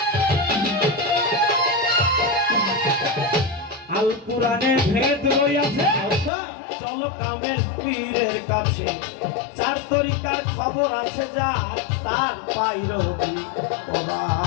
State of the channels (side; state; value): right; drops out; at 6.3 s